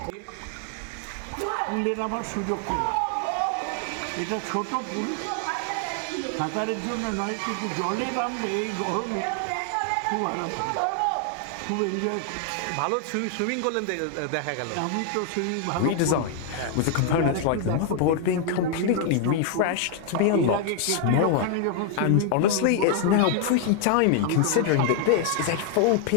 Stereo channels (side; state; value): both; different; correlation 0.00